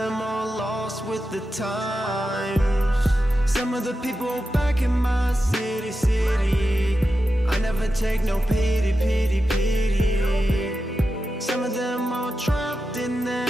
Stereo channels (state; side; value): normal; both; correlation 0.90